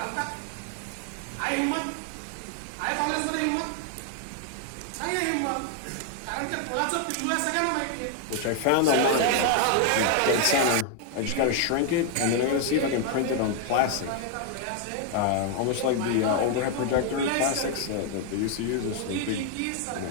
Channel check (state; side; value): different; both; correlation 0.00